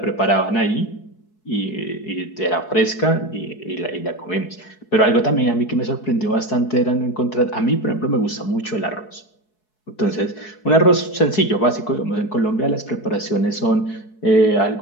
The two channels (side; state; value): right; late; 4.7 ms